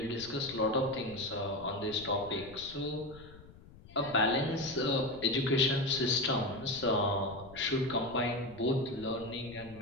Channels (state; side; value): noise; left; rumble, 19 dB below the sound